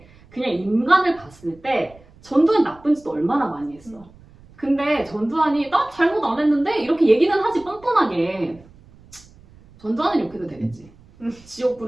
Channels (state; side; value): noise; right; rumble, 25 dB below the sound